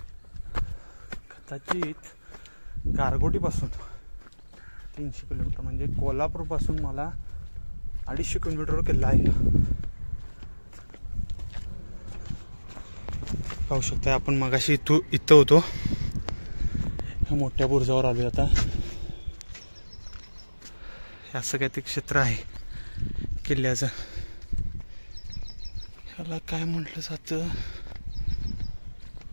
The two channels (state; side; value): inverted; both; correlation -1.00